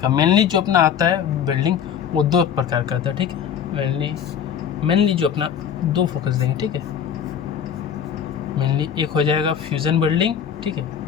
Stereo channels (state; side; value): quieter; right; 8.2 dB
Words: मेनली जो अपना आता है वेल्डिंग वो दो प्रकार का आता है, ठीक है। मेनली जो अपना दो फोकस देंगे, ठीक है। मेनली एक हो जाएगा फ्यूज़न वेल्डिंग, ठीक है,